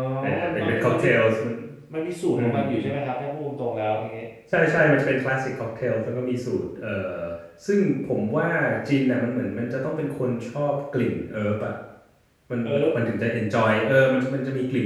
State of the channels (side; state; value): both; identical; correlation 1.00